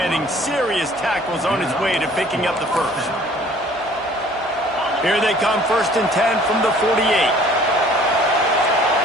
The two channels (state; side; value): normal; both; correlation 0.53